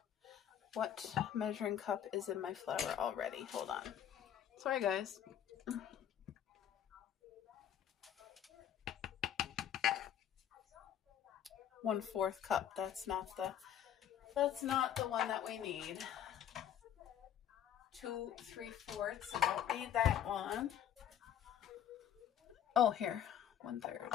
What measuring cup is in my flour already? Hold on. Sorry, guys. One-4 cup. That's not the one that we need. 2 3/4. I don't need that one. Oh, here. 1/3.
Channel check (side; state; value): right; quieter; 10.1 dB